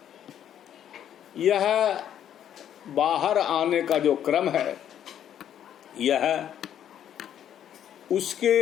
यह बाहर आने का जो क्रम है, यह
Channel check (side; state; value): right; quieter; 10.1 dB